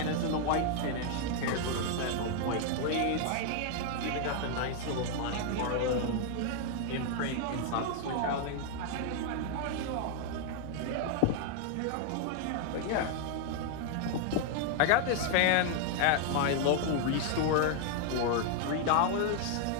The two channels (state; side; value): different; both; correlation 0.00